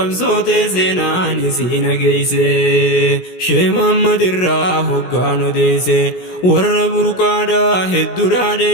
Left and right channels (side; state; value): right; late; 17 ms